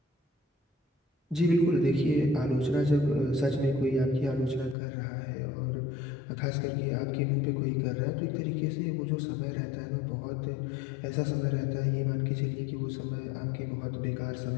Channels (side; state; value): right; drops out; at 4.8 s